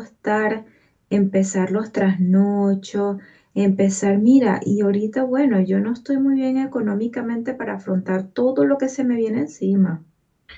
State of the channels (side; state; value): both; identical; correlation 1.00